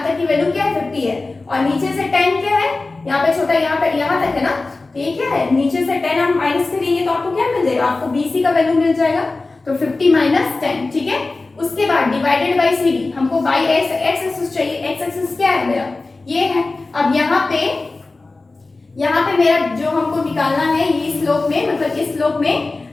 तक की वैल्यू क्या है 50 है, और नीचे से 10 क्या है, यहाँ पे छोटा यहाँ तक है ना, तो ये क्या है, नीचे से 10 हम माइनस करेंगे तो आपको क्या मिल जाएगा, आपको BC का वैल्यू मिल जाएगा। तो 50 माइनस 10, ठीक है। उसके बाद डिवाइडेड बाय CD, हमको बाय x एक्सिस चाहिए, x एक्सिस क्या है मेरा ये है। अब यहाँ पे मेरा जो हमको निकालना है ये स्लोप में, मतलब इस स्लोप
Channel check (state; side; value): quieter; right; 3.4 dB